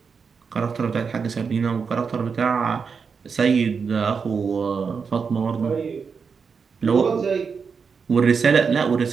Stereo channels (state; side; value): quieter; left; 5.7 dB